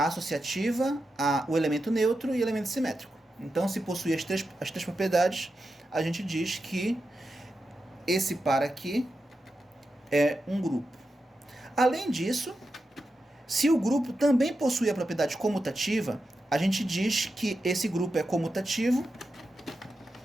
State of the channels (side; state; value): both; normal; correlation 0.89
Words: associativa, o elemento neutro e o elemento simétrico. Então, se possuir as três propriedades, a gente diz que esse par aqui é um grupo. Além disso, se o grupo também possui a propriedade comutativa, a gente diz que esse grupo é comutativo